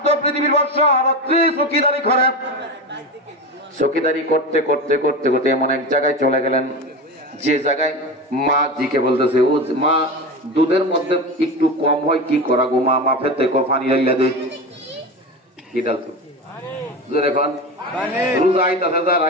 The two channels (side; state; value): both; normal; correlation 0.24